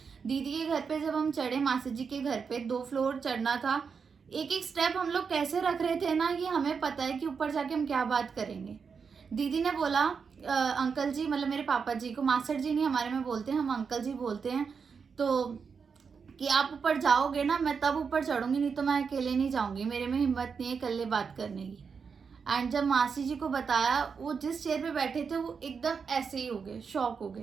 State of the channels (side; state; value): left; quieter; 5.8 dB